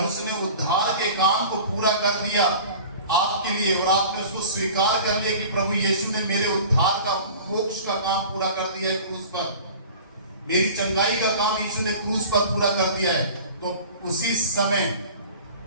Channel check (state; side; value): inverted; both; correlation -0.41